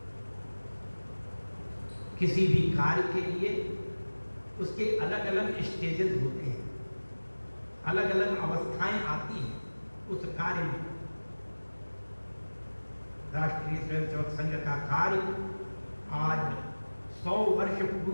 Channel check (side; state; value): both; inverted; correlation -1.00